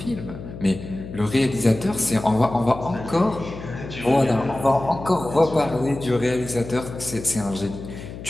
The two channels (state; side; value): noise; left; hum, 12 dB below the sound